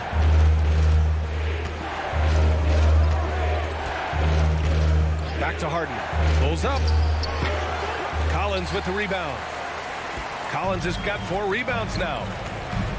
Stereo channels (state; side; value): identical; both; correlation 1.00